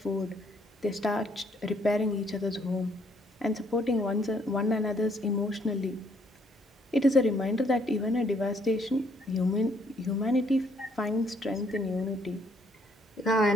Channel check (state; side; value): normal; both; correlation 0.67